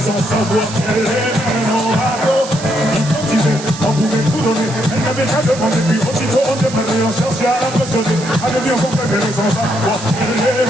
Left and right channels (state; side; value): noise; right; hiss, 12 dB below the sound